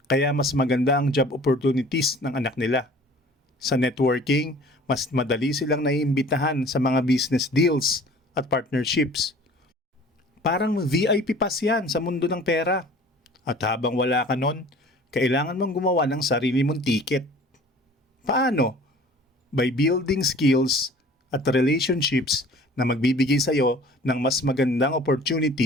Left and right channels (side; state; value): both; normal; correlation 0.47